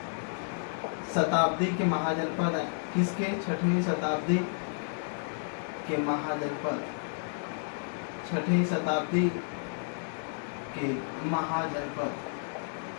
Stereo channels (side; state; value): right; silent; digital silence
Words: शताब्दी के महाजनपद है। किसके? 6वीं शताब्दी के महाजनपद, 6वीं शताब्दी के महाजनपद,